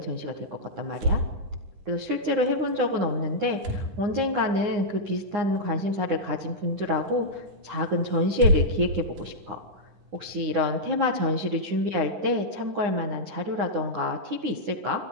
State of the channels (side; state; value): left; late; 9.8 ms